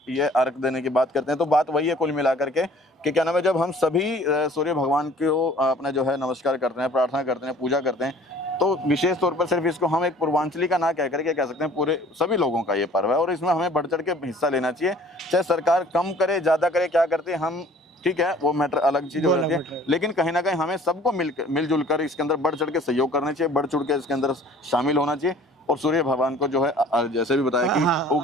ये अर्घ देने की बात करते हैं, तो बात वही है कुल मिला करके कि क्या नाम है, जब हम सभी सूर्य भगवान को अपना जो है नमस्कार करते हैं, प्रार्थना करते हैं, पूजा करते हैं, तो विशेष तौर पर सिर्फ इसको हम एक पूर्वांचली का ना कह करके कह सकते हैं, पूरे सभी लोगों का ये पर्व है और इसमें हमें बढ़ चढ़ के हिस्सा लेना चाहिए। चाहे सरकार कम करे, ज़्यादा करे, क्या करते हैं हम, ठीक है, वो मैटर अलग चीज़ हो जाती है, लेकिन कहीं ना कहीं हमें सबको मिलजुल कर इसके अंदर बढ़ चढ़ के सहयोग करना चाहिए, बढ़ चढ़ के इसके अंदर शामिल होना चाहिए। और सूर्य भगवान को जो है जैसे भी बताया कि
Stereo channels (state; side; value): normal; both; correlation 0.52